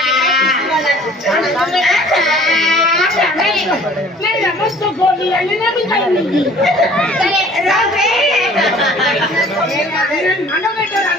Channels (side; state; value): both; normal; correlation 0.51